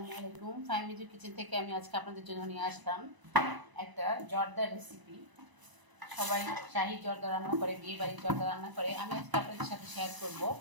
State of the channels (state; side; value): late; left; 1.0 ms